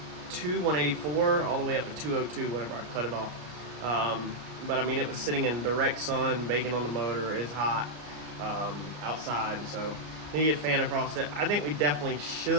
184, all the way up to 202 whenever I cut it off. But I mean, it was sitting in direct sun, baking on the motor, it's hot outside, so you get a fan across it. I think we definitely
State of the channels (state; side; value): late; left; 33 ms